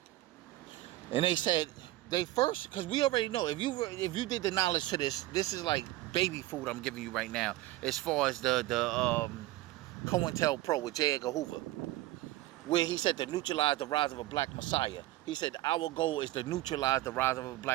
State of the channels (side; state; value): left; quieter; 17.1 dB